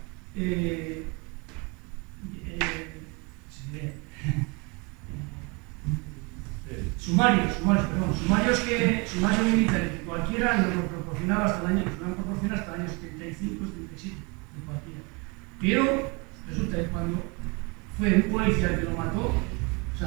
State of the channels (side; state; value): left; quieter; 29.7 dB